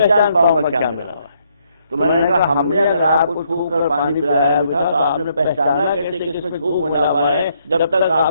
پاؤں گا کیا ملا ہوا ہے. تو میں نے کہا ہم نے اگر آپ کو چھو کر پانی پلایا بھی تھا تو آپ نے پہچانا کیسے کہ اس میں چھو ملا ہوا ہے جب تک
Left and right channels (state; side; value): inverted; both; correlation -0.72